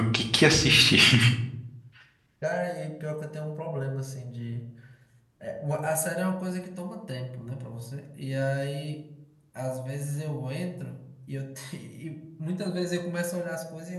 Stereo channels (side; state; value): both; identical; correlation 1.00